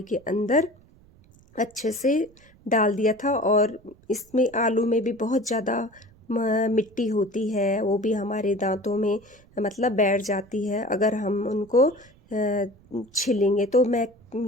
के अंदर अच्छे से डाल दिया था। और इसमें आलू में भी बहुत ज़्यादा मिट्टी होती है, वो भी हमारे दांतों में मतलब बैठ जाती है अगर हम उनको छिलेंगे। तो मैं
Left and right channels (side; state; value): right; noise; rumble, 28 dB below the sound